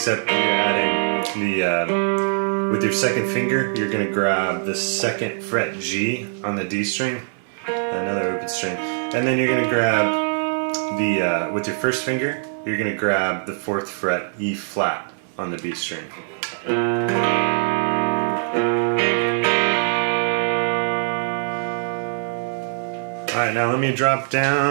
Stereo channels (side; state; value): left; silent; digital silence